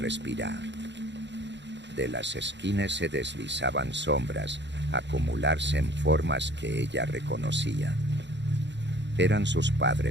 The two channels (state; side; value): late; left; 0.52 ms